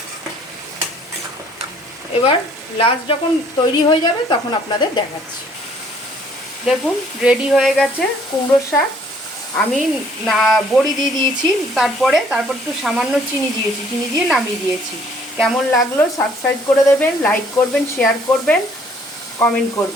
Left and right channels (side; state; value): both; normal; correlation 0.60